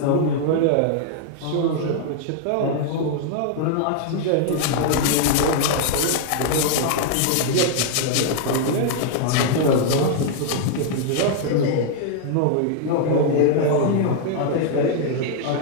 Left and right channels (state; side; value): different; both; correlation 0.00